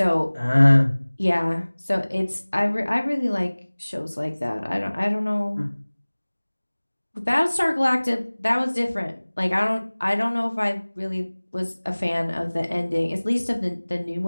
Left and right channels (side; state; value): both; inverted; correlation -1.00